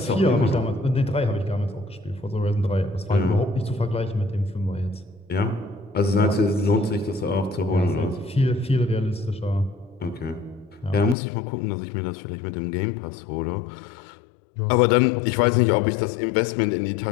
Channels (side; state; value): right; drops out; at 11.2 s